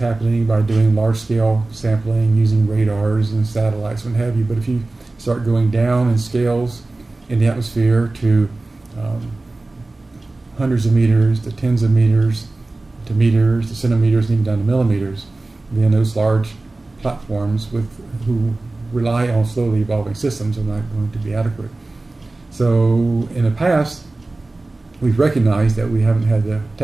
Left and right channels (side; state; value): left; quieter; 3.1 dB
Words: by doing large scale sampling using radars and satellites and what have you. But if you start going down in scales in the atmosphere to hundreds of meters, to tens of meters, to meters, to centimeters, and even down to millimeters, then those large platforms who rely on slowly evolving systems are not going to be adequate. So in the past, we've recognized that we haven't had the